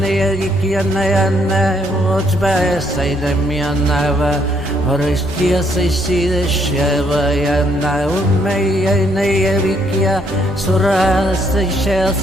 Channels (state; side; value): normal; both; correlation 0.70